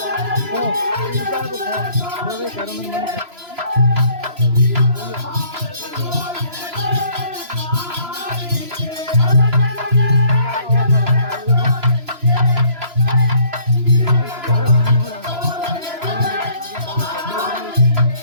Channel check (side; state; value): left; late; 3.0 ms